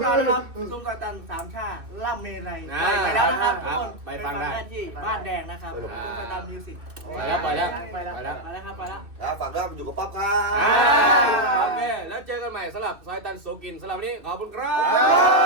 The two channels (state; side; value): late; left; 2.6 ms